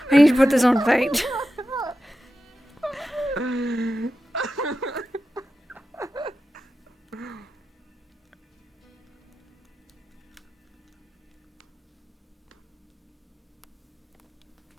to put this on fate.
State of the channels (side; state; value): both; normal; correlation 0.92